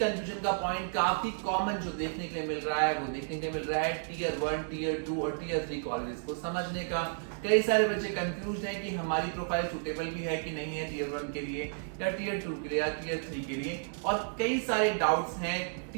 का पॉइंट काफी कॉमन जो देखने के लिए मिल रहा है वो देखने के लिए मिल रहा है टीयर 1, टीयर 2 और टीयर 3 कॉलेजेस को समझने का। कई सारे बच्चे कंफ्यूज हैं कि हमारी प्रोफाइल सुटेबल भी है कि नहीं है टीयर 1 के लिए या टीयर 2 के लिए या टीयर 3 के लिए। और कई सारे डाउट्स हैं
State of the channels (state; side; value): silent; left; digital silence